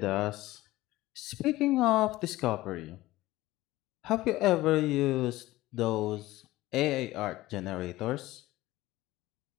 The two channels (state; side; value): quieter; right; 17.5 dB